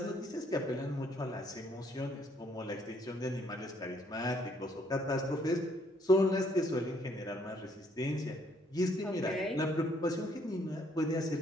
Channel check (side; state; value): both; normal; correlation 0.67